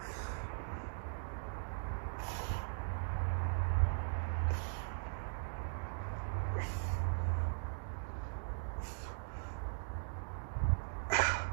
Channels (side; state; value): left; silent; digital silence